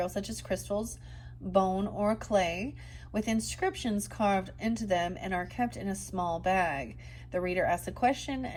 such as crystals, bone, or clay, with inscriptions carved into them and are kept in a small bag. The reader asks a question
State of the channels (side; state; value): both; identical; correlation 1.00